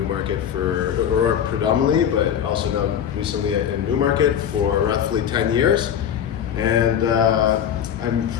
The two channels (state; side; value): quieter; right; 9.0 dB